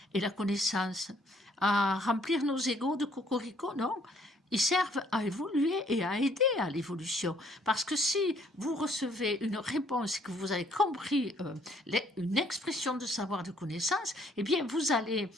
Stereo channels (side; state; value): both; normal; correlation 0.64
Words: et la connaissance? À remplir nos égos de cocorico? Non. Ils servent à évoluer et à aider à l'évolution. Parce que si vous recevez une réponse et que vous avez compris une expression de savoir, de connaissance, eh bien, vous allez